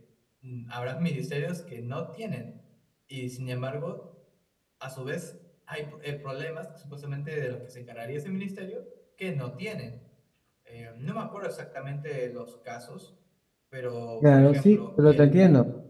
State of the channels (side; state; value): both; identical; correlation 1.00